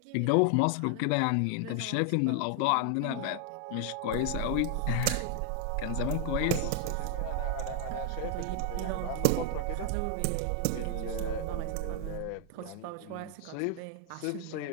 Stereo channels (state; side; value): different; both; correlation 0.00